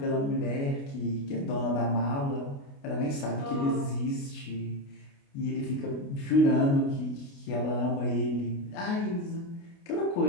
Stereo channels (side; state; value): right; late; 29 ms